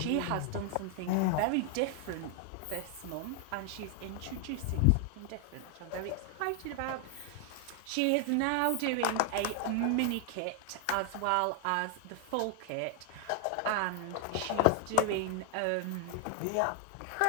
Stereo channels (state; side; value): different; both; correlation 0.00